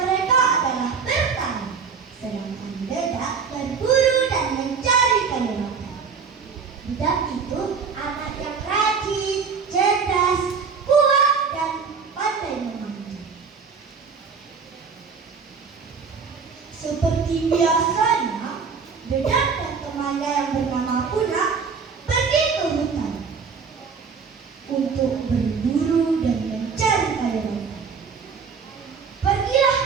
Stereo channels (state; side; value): quieter; left; 5.7 dB